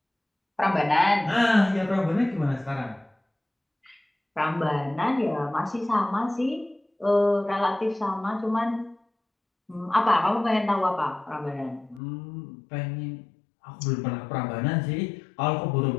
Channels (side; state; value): right; drops out; at 12.0 s